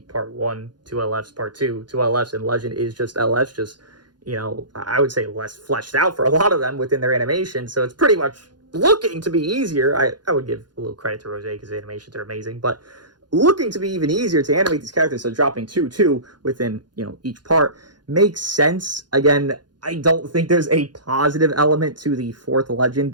part 1, 2 LFs, part 2, 2 LFs, and Legend is just LFs, just, you know, I would say less fleshed out for a lot of them within their animation, so it's pretty much looking to be easier. I would give a little credit to Rose, because the animations are amazing, but looking to be even easier to animate these characters, so dropping 2 within, you know, each part makes sense. Again, I don't think there's a positive element to the 4th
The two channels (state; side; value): late; left; 0.70 ms